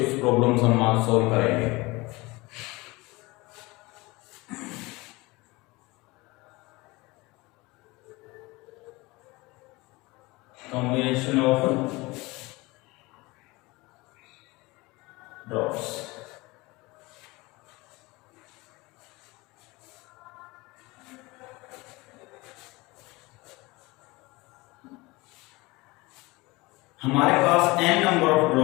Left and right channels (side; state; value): right; quieter; 22.9 dB